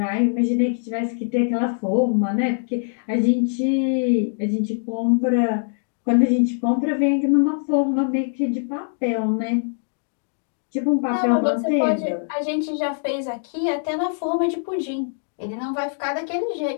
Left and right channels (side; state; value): right; silent; digital silence